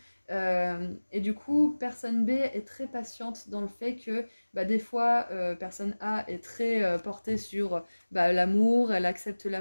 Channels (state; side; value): inverted; both; correlation -1.00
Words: Et du coup, personne B est très patiente dans le fait que des fois, personne A est très portée sur l'amour, elle accepte